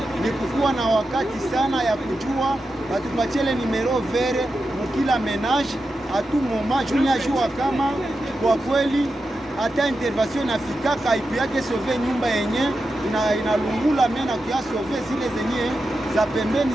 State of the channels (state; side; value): normal; both; correlation 0.89